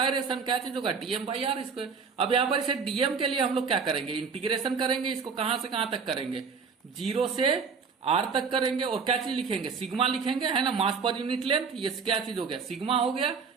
क्या चीज होगा, dm/r²। अब यहाँ पर इसे dm के लिए हम लोग क्या करेंगे, इंटीग्रेशन करेंगे, इसको कहां से कहां तक करेंगे, 0 से r तक करेंगे, और क्या चीज लिखेंगे, सिग्मा लिखेंगे, है ना, मास पर यूनिट लेंथ, ये क्या चीज हो गया, सिग्मा हो गया,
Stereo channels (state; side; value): quieter; left; 5.5 dB